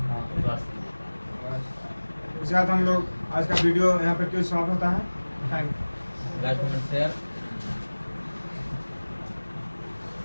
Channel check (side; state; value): both; inverted; correlation -1.00